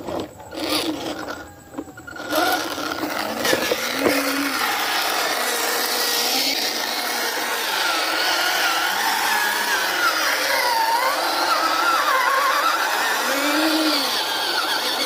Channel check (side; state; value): both; identical; correlation 1.00